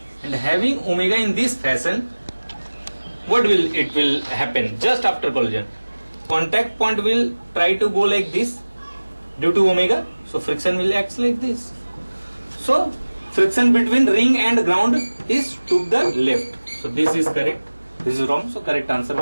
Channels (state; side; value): inverted; both; correlation -1.00